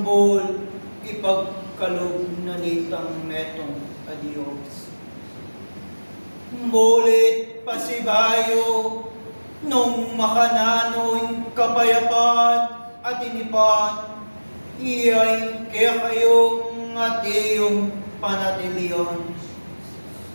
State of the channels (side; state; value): both; inverted; correlation -1.00